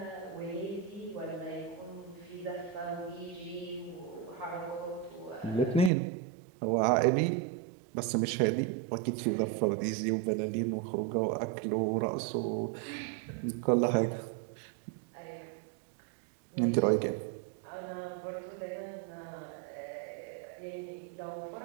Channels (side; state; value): left; drops out; at 5.9 s